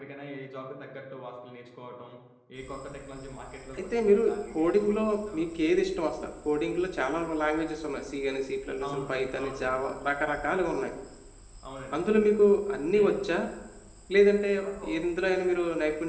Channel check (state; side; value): identical; both; correlation 1.00